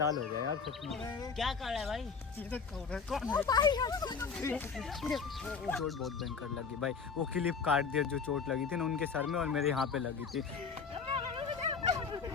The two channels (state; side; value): quieter; right; 5.6 dB